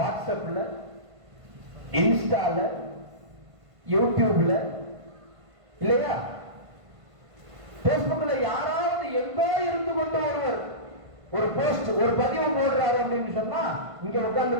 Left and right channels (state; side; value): late; left; 1.5 ms